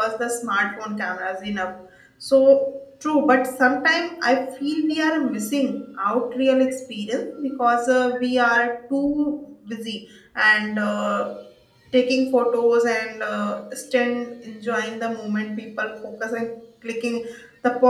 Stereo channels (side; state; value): both; identical; correlation 1.00